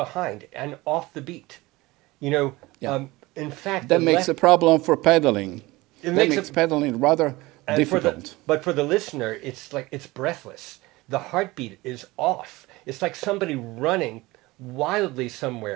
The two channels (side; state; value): left; quieter; 20.8 dB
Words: and off the beat. In fact, that makes a problem for pedaling. That makes pedaling rather difficult. But for the listener, it's like it's breathless. The heartbeat is off. It's like somebody running wildly